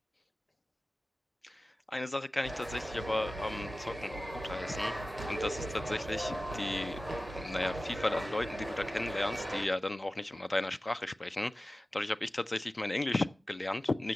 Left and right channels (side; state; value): both; normal; correlation 0.96